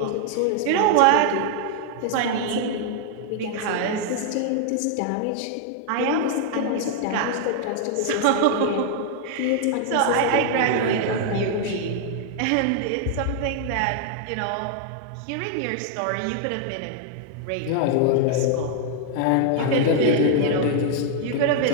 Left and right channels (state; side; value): different; both; correlation 0.00